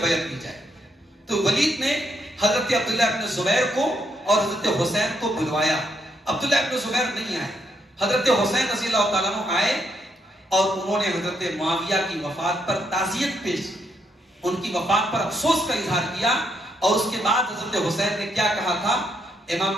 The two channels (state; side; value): normal; both; correlation 0.76